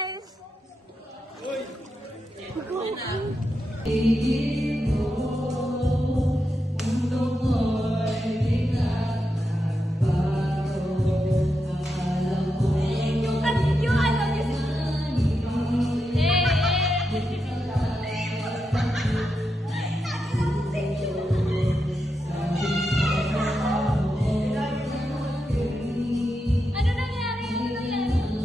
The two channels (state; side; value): normal; both; correlation 0.86